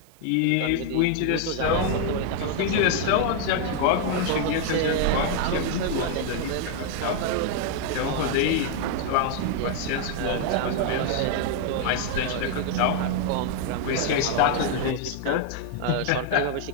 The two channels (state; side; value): different; both; correlation 0.00